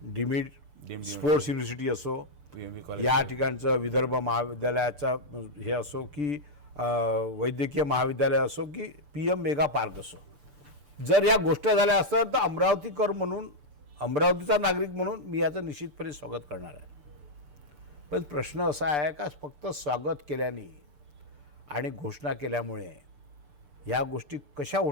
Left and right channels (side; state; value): left; late; 6.8 ms